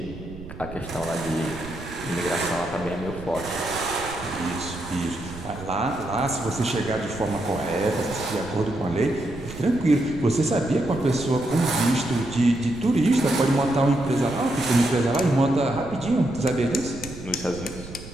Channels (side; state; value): right; noise; rumble, 13 dB below the sound